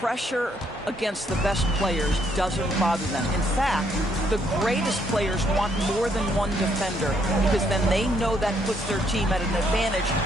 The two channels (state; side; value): normal; both; correlation 0.71